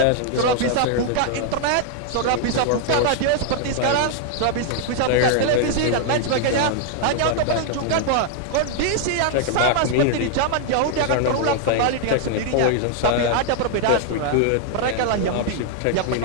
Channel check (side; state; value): both; different; correlation 0.00